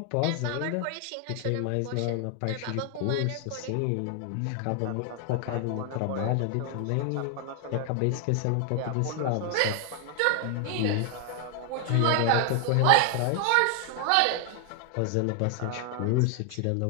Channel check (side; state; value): both; different; correlation 0.00